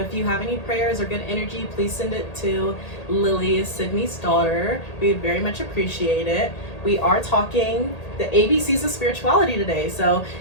you have any prayers or good energy, please send it to Lily, Sydney's daughter. We very much appreciate it. We are talking the ABCs of spirituality today. So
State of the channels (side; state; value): right; late; 1.8 ms